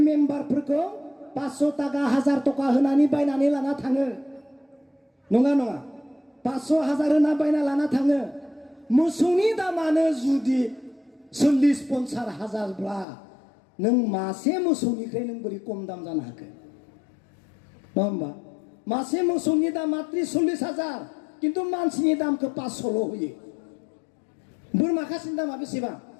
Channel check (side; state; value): right; drops out; at 13.1 s